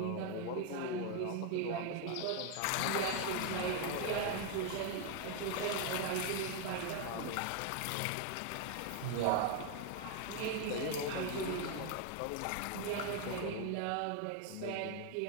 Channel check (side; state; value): both; different; correlation 0.01